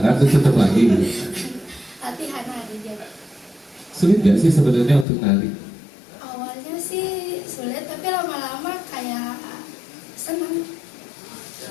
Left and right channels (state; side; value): drops out; right; at 5.1 s